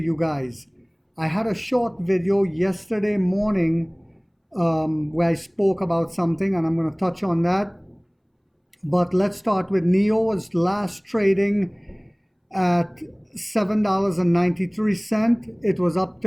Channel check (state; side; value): identical; both; correlation 1.00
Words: guys. I had a short video yesterday morning where I spoke about something, and I'm going to touch on that. But let's start with NIO was last trading at $7.93. It was up